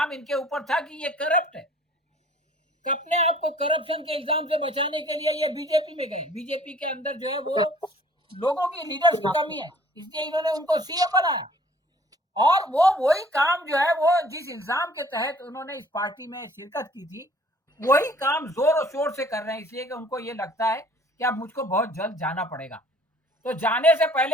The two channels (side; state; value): both; normal; correlation 0.54